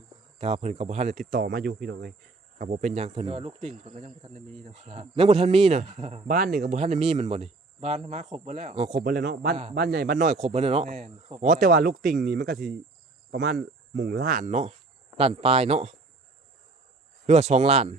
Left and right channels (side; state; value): left; quieter; 3.5 dB